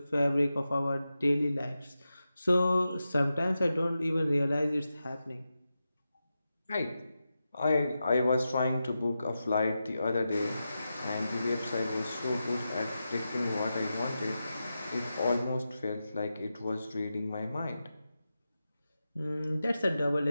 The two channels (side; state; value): both; inverted; correlation -0.91